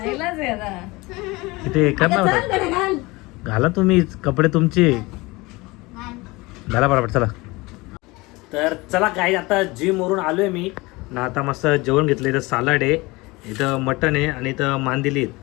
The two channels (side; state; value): right; quieter; 23.0 dB